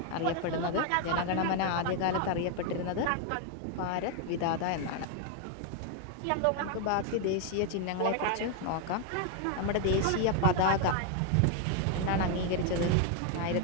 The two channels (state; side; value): different; both; correlation 0.01